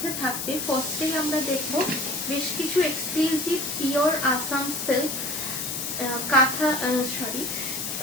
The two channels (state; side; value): noise; left; hiss, 4 dB below the sound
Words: থাকবে, ফার্স্টেই আমরা দেখব বেশ কিছু exclusive pure Assam silk